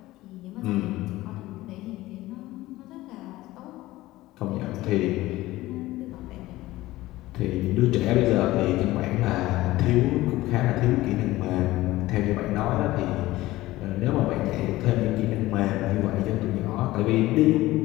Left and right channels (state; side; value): quieter; right; 17.5 dB